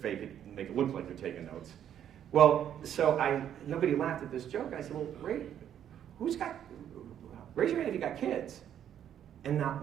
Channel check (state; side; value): quieter; left; 9.9 dB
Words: it and make it look like you're taking notes. Well, so nobody laughed at this joke. I said, well, great. Raise your hand if you got kids. And not